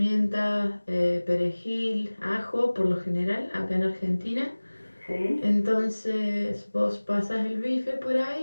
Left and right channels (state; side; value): inverted; both; correlation -1.00